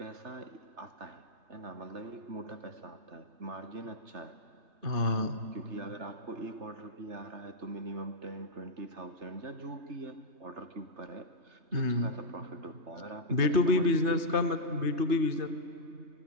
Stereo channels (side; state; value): left; late; 3.3 ms